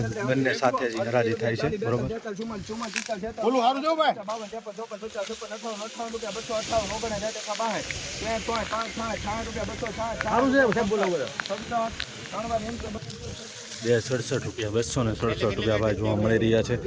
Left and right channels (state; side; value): identical; both; correlation 1.00